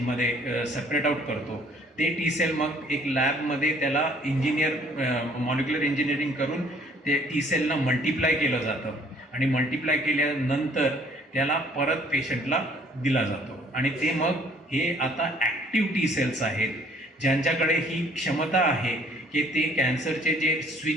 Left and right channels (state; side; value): normal; both; correlation 0.59